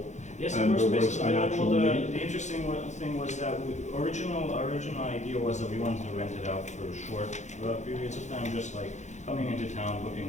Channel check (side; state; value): right; late; 0.34 ms